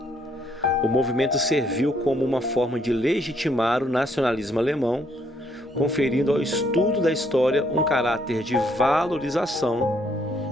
o movimento serviu como uma forma de legitimar o nacionalismo alemão, conferindo ao estudo da história um caráter de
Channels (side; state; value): both; normal; correlation 0.69